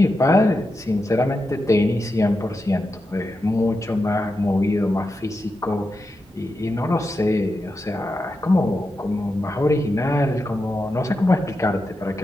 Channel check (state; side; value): normal; both; correlation 0.88